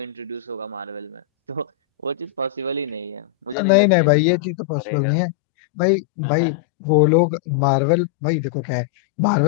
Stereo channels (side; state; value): right; drops out; at 3.6 s